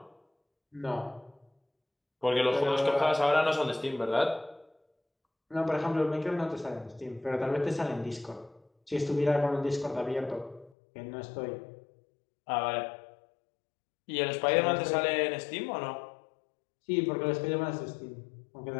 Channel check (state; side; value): drops out; right; at 10.7 s